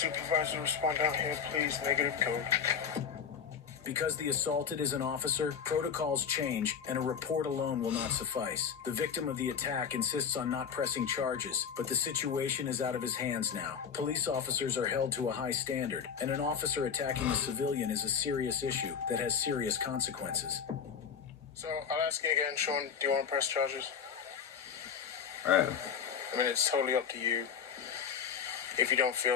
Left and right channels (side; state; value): right; quieter; 7.3 dB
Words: respond down here, please? Negative code. Because the assaulted is an officer, protocols change, and a report alone will not suffice. The victim of the attack insists on not pressing charges, but the situation is out of his hands now. Police officers are held to a high standard, and an officer attacking a civilian is a serious issue that has serious consequences. So, I'll ask you again, Sean, do you want to press charges? Right. I mean, it's totally up to you. If you don't